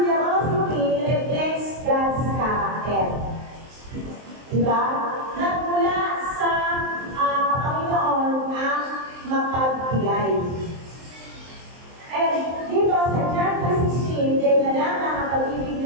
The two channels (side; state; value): left; late; 23 ms